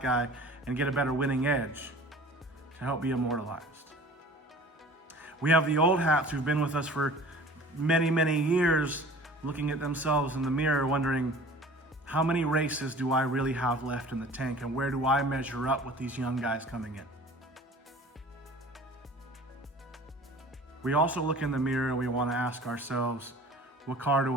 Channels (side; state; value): both; normal; correlation 0.45